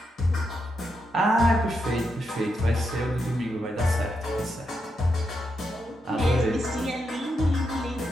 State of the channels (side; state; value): both; normal; correlation 0.83